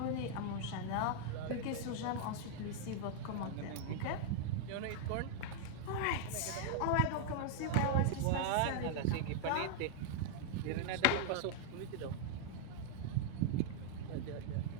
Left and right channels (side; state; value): both; different; correlation -0.01